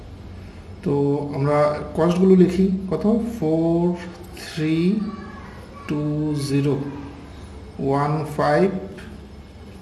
তো আমরা কস্টগুলো লিখি। কত? 4 3 2 0 1 5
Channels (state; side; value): identical; both; correlation 1.00